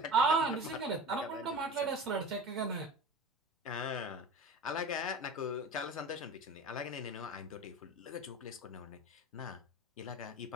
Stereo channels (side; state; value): both; normal; correlation 0.33